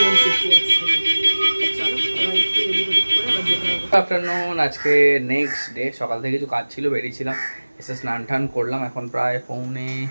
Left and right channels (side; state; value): both; inverted; correlation -1.00